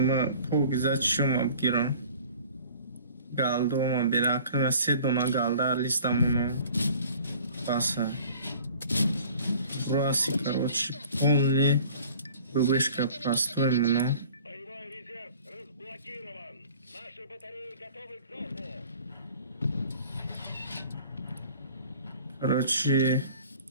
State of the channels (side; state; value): both; inverted; correlation -0.48